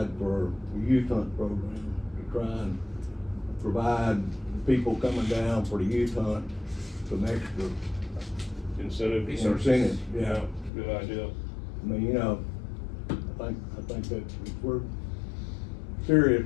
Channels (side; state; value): right; drops out; at 10.7 s